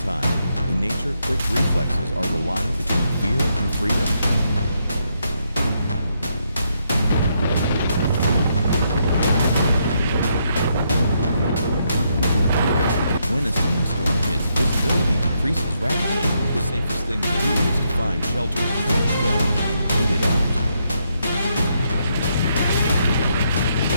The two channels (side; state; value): both; inverted; correlation -0.77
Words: time. In nature, quick reflexes are the line between fear and freedom. When a sandstorm hits, visibility decreases rapidly. The safest thing to do is to find shelter, crouch down, and wait it out.